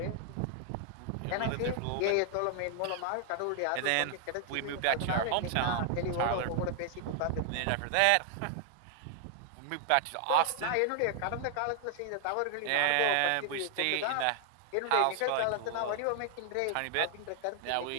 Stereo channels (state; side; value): different; both; correlation 0.00